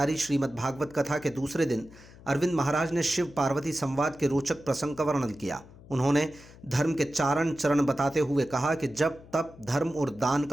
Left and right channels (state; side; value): noise; left; hum, 21 dB below the sound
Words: श्रीमद् भागवत कथा के दूसरे दिन अरविंद महाराज ने शिव पार्वती संवाद के रोचक प्रसंग का वर्णन किया। उन्होंने धर्म के चारण चरण बताते हुए कहा कि जब तप, धर्म और दान